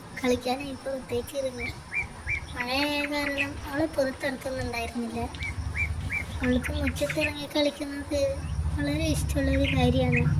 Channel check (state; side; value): identical; both; correlation 1.00